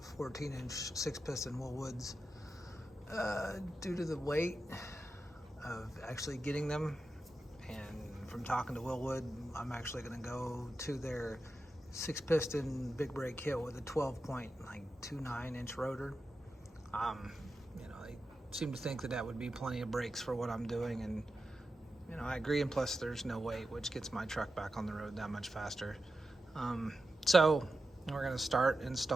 14-inch 6-piston Wilwoods due to the weight of actually getting them, and from talking to Wilwood, I'm actually gonna go to their 6-piston big brake kit with a 12.29-inch rotor. You know, they seem to think that that would be plenty of brakes for what I'm doing, and you know, I agree, and plus there's no weight, which gets my truck back on the road that much faster. So we're gonna start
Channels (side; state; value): both; normal; correlation 0.91